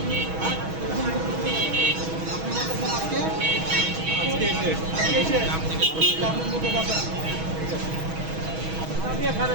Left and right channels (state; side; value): late; left; 6.2 ms